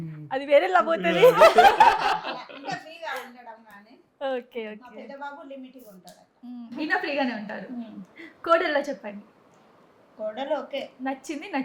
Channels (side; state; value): both; identical; correlation 1.00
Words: అది వేరే పోతుంది. ఇంకా ఫ్రీగా ఉండడం కానీ. ఓకే. మా ఓకే. పెద్ద బాబు లిమిట్గా ఉంటాడు. ఈయన ఫ్రీగానే ఉంటారు. కోడల్లో చెప్పండి. కోడలు ఓకే, నచ్చింది